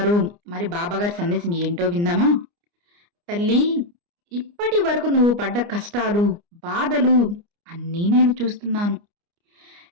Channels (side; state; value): left; late; 29 ms